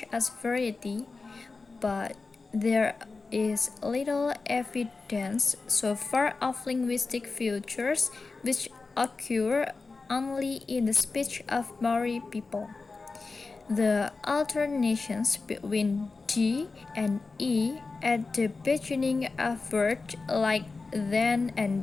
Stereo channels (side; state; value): right; quieter; 4.0 dB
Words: a variety, but there is little evidence so far of linguistic features which occur only in the speech of Maori people. The alternations between D and E at the beginning of words like then